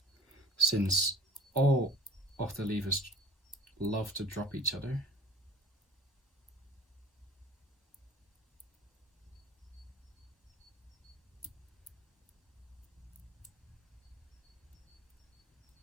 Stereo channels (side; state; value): both; normal; correlation 0.44